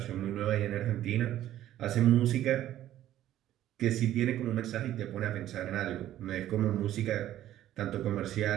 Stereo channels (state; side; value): quieter; left; 12.8 dB